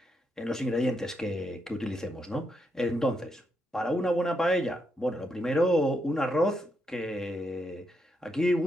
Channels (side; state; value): both; normal; correlation 0.81